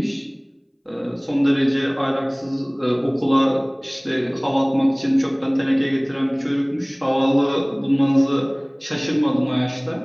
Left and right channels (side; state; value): both; identical; correlation 1.00